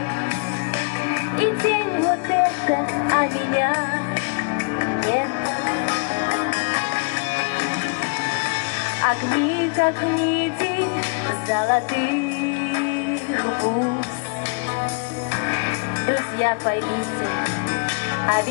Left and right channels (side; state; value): right; quieter; 35.0 dB